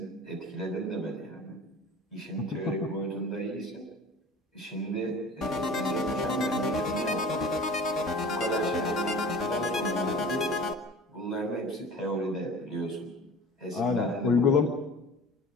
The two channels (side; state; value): both; normal; correlation 0.41